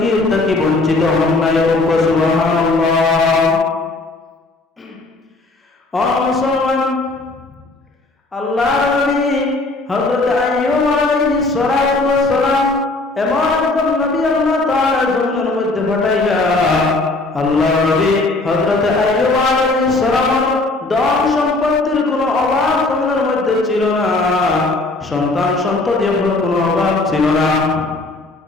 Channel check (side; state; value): right; quieter; 3.2 dB